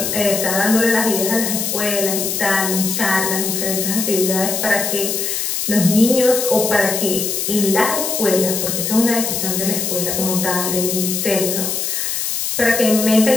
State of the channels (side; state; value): left; noise; hiss, 1 dB below the sound